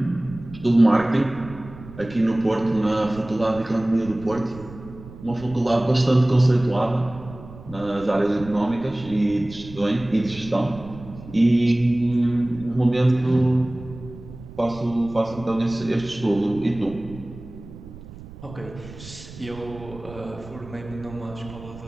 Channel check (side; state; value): right; noise; rumble, 16 dB below the sound